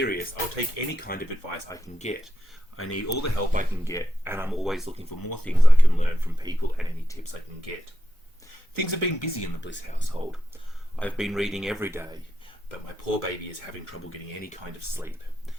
I'll take any kind of advice I can get. I need all the help I can get, and I'm always looking for more things I can learn from people and any tips I can get. Things have been busy in the Bliss household. I've been reading every day, but my poor baby is having trouble getting any kind of sleep.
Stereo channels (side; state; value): both; normal; correlation 0.87